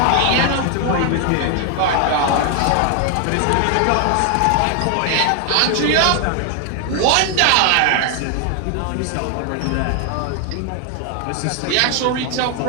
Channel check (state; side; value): different; both; correlation 0.00